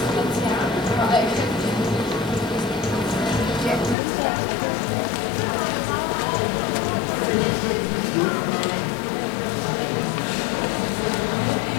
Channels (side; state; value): right; drops out; at 4.0 s